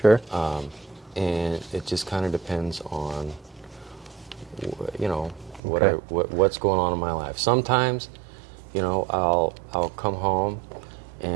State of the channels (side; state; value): left; drops out; at 5.6 s